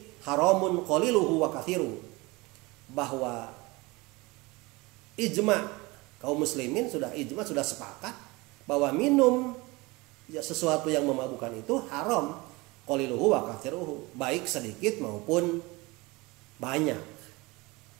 haramun qaliluhu wa kathiru, bahwa ijma Kaum muslimin sudah ijma, sudah sepakat bahwa minum ya sesuatu yang memabukkan itu haram, qaliluhu wa kathiruhu, baik sedikit maupun banyak.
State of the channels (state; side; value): quieter; left; 23.7 dB